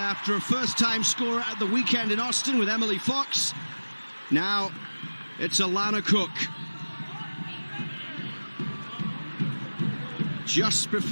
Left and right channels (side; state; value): both; inverted; correlation -1.00